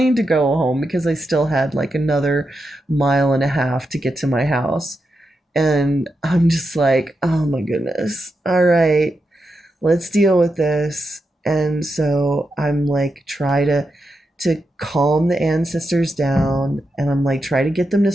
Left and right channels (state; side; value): normal; both; correlation 0.86